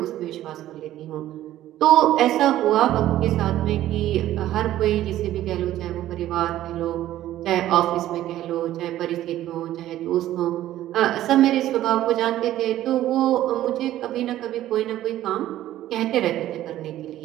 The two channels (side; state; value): left; quieter; 13.6 dB